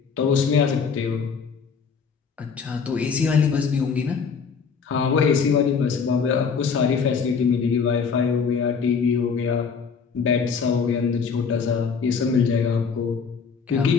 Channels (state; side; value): quieter; right; 5.9 dB